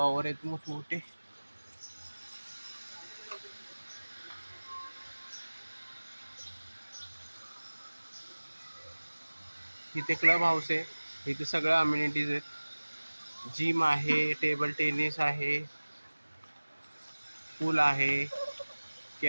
आहेत मोठमोठे. इथे क्लब हाऊस आहे, इथे सगळ्या अम्युनिटीज आहेत. जिम आहे, टेबल टेनिस आहे, पूल आहे,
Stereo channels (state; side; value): inverted; both; correlation -1.00